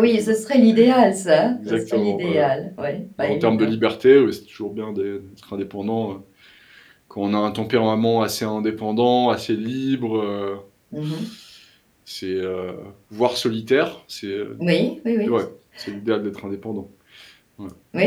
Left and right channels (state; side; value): identical; both; correlation 1.00